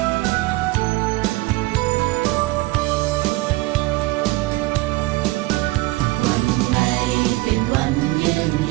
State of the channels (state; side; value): quieter; left; 20.8 dB